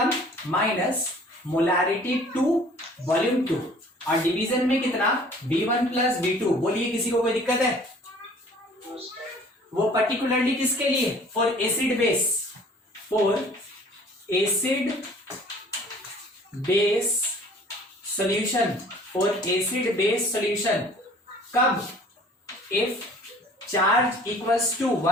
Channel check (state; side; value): normal; both; correlation 0.51